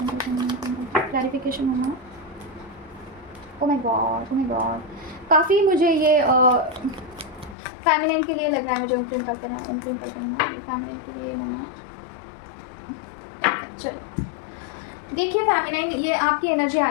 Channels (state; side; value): drops out; right; at 7.6 s